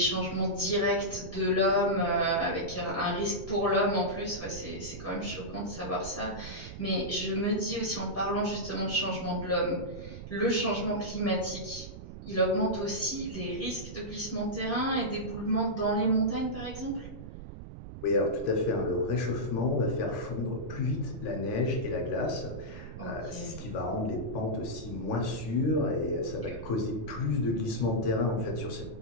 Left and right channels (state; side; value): noise; right; rumble, 11 dB below the sound